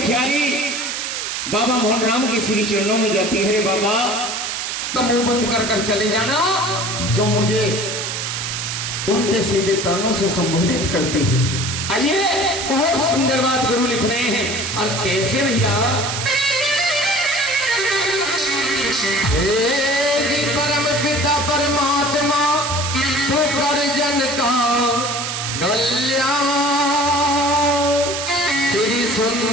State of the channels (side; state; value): right; noise; hiss, 3 dB below the sound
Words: बाबा मोहन राम के श्री चरणों में जाती है। रे बाबा, तो मुंह बंद कर कर चले जाना जो मुझे उल्टे सीधे तानों से संबोधित करती है। आइए, बहुत सुंदर बात गुरु लिख रहे हैं। और कैसे भैया, परम पिता परमात्मा तो कर जन का कल्याण, श्री